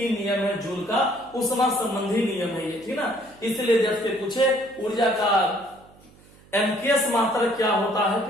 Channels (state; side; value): noise; right; hum, 26 dB below the sound